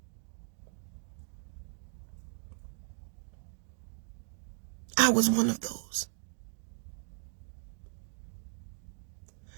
I was one of those.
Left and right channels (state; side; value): silent; left; digital silence